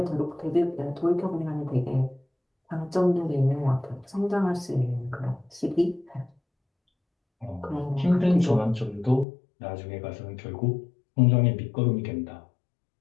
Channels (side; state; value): right; drops out; at 9.2 s